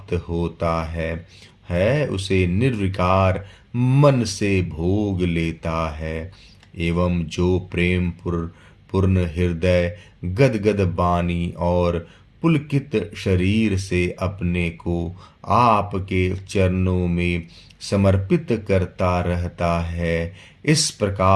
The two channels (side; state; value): both; identical; correlation 1.00